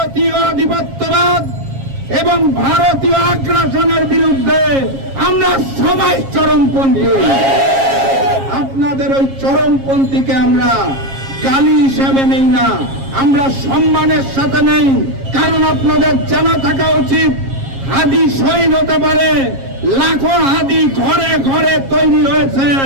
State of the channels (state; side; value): late; left; 7.4 ms